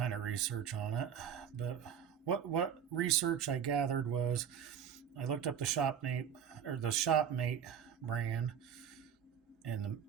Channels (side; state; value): left; quieter; 8.3 dB